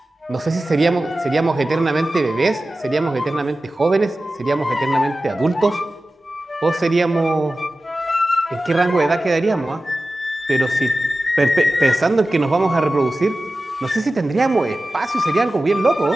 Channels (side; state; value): both; normal; correlation 0.95